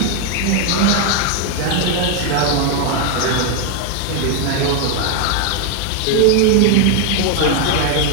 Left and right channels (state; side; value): different; both; correlation 0.01